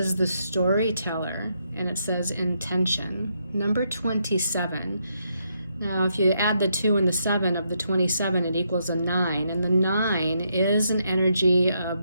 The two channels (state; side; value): inverted; both; correlation -0.78